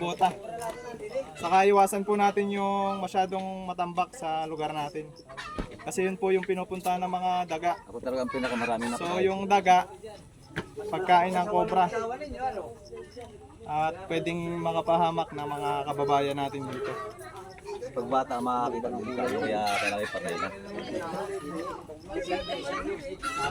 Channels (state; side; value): identical; both; correlation 1.00